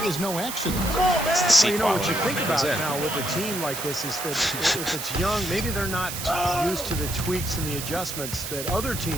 is no accident. Well, you know what you think about now with a team like this is that if it's young, maybe they're not used to the tweaks and the adjustments that other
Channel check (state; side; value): noise; right; hiss, 6 dB below the sound